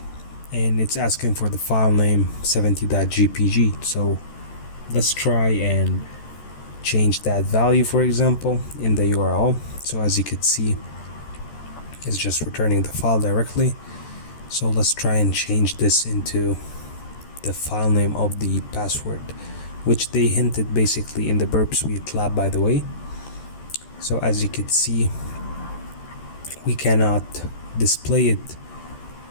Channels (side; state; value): right; late; 14 ms